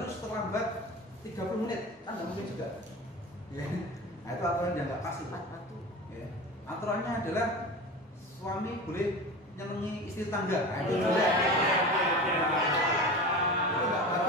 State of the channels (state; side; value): normal; both; correlation 0.31